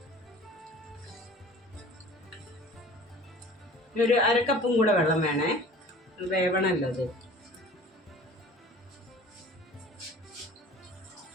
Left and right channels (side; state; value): both; normal; correlation 0.45